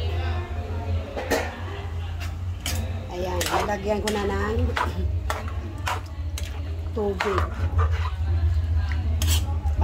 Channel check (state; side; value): identical; both; correlation 1.00